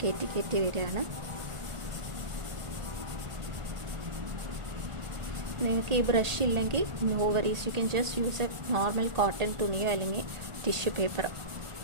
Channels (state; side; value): late; left; 1.4 ms